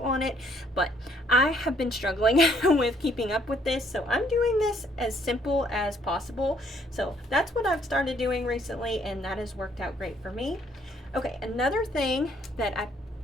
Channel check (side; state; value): both; normal; correlation 0.66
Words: on it. But I have been struggling with keeping up with this, so I'm doing this as simple as possible. So that's what I've started doing recently, and that has worked out great for me. Okay, another thing that I